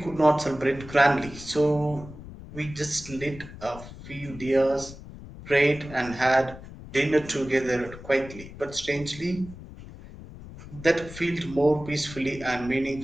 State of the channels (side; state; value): left; noise; rumble, 15 dB below the sound